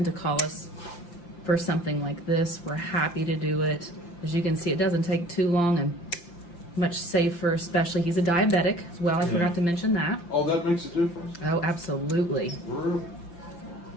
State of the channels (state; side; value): late; right; 5.8 ms